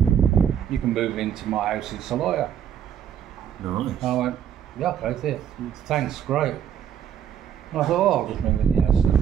you can move into my house in Salaya." Nice. I went, "Yeah, okay, thanks, great." And I thought, "Oh, I'll just move in the house in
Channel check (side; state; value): left; quieter; 9.1 dB